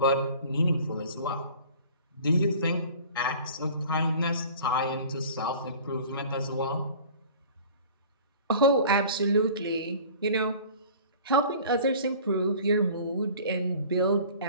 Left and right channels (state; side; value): inverted; both; correlation -0.45